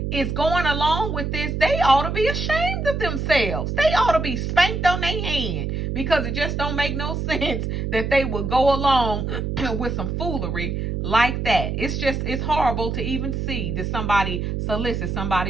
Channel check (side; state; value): right; noise; hum, 2 dB below the sound